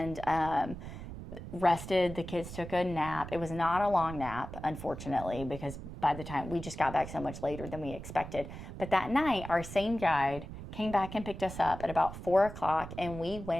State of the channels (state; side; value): noise; right; rumble, 11 dB below the sound